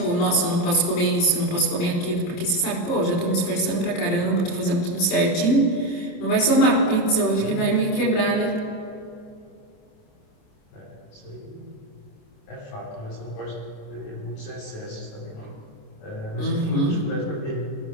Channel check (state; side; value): late; right; 28 ms